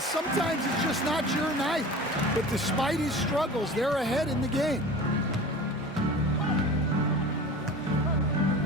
sometimes it's just not your night. But despite his struggles, they're ahead in the game.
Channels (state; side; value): normal; both; correlation 0.37